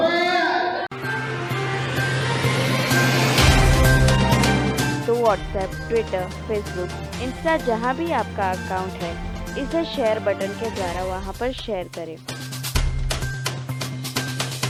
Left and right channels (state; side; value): identical; both; correlation 1.00